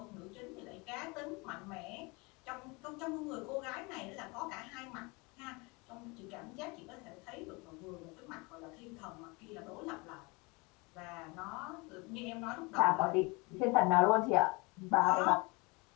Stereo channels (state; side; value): quieter; right; 27.3 dB